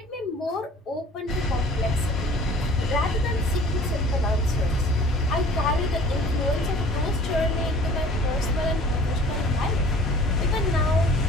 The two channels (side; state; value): both; normal; correlation 0.49